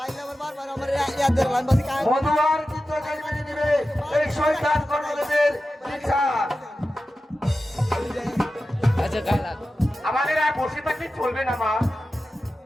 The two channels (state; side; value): normal; both; correlation 0.93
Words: মধু আর চিত্রকে মেনে দিবে এই শয়তান কর্ণদেবের বিচার। আমাদের আর বসে থাকলে চলবে না মা,